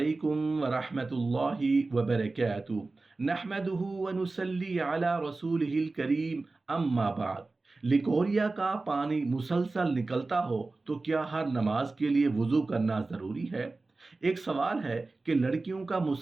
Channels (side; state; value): left; quieter; 3.4 dB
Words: वरहमतुल्लाहि वबरकातुहू। नहमदुहु व नुसल्ली अला रसूलिहिल करीम, अम्मा बाद। लिकोरिया का पानी मुसलसल निकलता हो तो क्या हर नमाज के लिए वुज़ू करना ज़रूरी है? एक सवाल है कि लड़कियों का